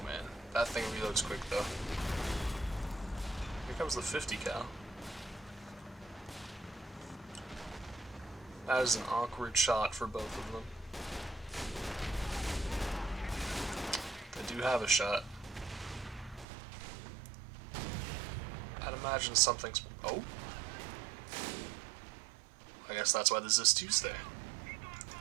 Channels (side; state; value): left; drops out; at 16.4 s